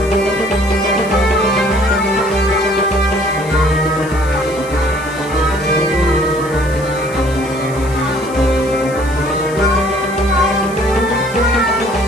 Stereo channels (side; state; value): left; noise; hiss, 19 dB below the sound